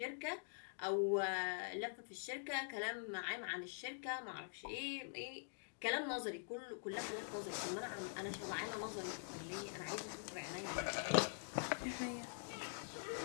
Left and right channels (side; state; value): right; silent; digital silence